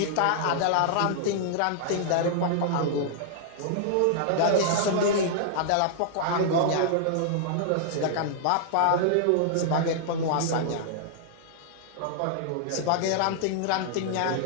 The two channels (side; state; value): both; different; correlation -0.01